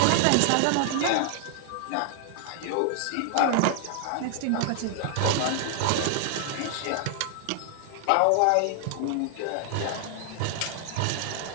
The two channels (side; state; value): both; different; correlation 0.00